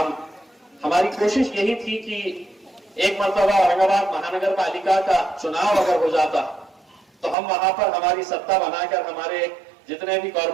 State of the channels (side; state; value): left; drops out; at 7.4 s